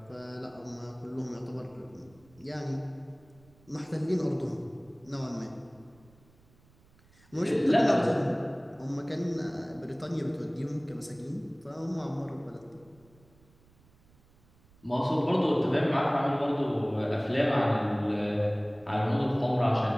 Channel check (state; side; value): noise; right; rumble, 29 dB below the sound